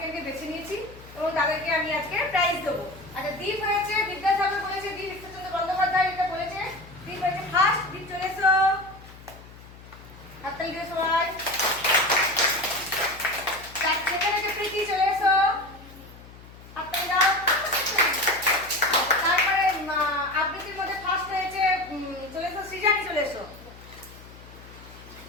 বেছে নিয়েছি এবং তাদেরকে আমি আজকে প্রাইজ দেবো। আচ্ছা, দীপ হয়েছে বিদ্যাসাগর বলেছে, দীপ ঈশ্বরচন্দ্র বন্দ্যোপাধ্যায় এটা বলেছে, দীপ হয়েছে ফার্স্ট। দীপ চলে এসো, হাততালি দিয়ে সবাই। সেখানে যে প্রীতি চলে এসো, হাততালি দাও। তারপরে আবৃত্তির মধ্যে ফার্স্ট হয়েছে চলে এসো সৃজানি, চলে এসো।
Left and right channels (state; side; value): noise; left; hum, 19 dB below the sound